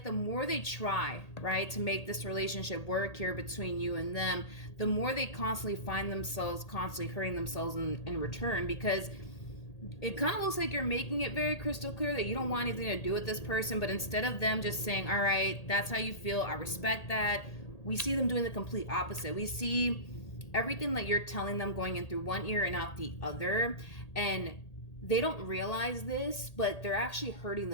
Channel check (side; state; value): right; late; 1.8 ms